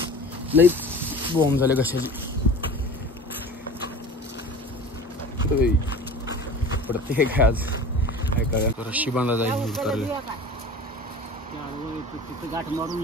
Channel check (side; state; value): both; normal; correlation 0.38